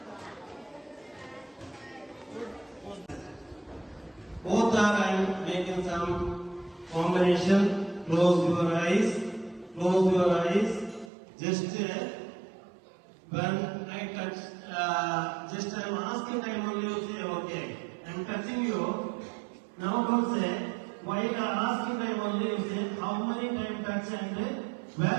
Both are I'm making some combination. Close your eyes. Close your eyes. Just when I touch, just I'm asking time only you say okay. I'm touching you. Now don't say. While asking time only you say how many time touch and where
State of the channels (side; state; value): left; drops out; at 11.1 s